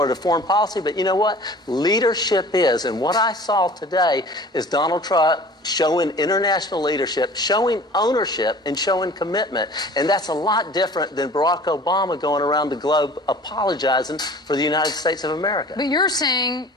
to foreign policy, but you know what? Leadership is. And what I saw today is Donald Trump showing international leadership, showing ownership, and showing commitment. And that's a lot different than Barack Obama going around the globe apologizing for the United States of America. But you're saying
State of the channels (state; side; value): normal; both; correlation 0.45